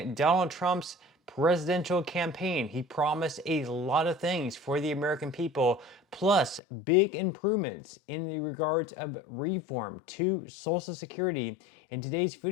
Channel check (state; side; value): drops out; right; at 6.6 s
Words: Donald Trump's presidential campaign, he promised a lot of things for the American people, plus big improvements in the regards of reform to Social Security. In today's